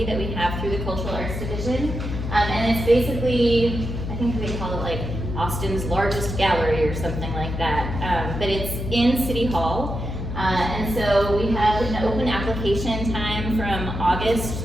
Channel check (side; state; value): left; noise; hum, 5 dB below the sound